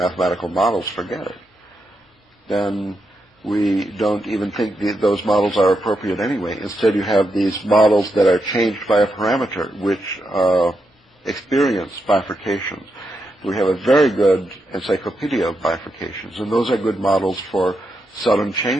models, forget it. Then we don't even think those models are appropriate anyway. Instead, you have these models that are changed by a parameter, which experience bifurcations. We have a very good encyclopedia of bifurcations, and those are good models for sudden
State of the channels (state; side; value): normal; both; correlation 0.84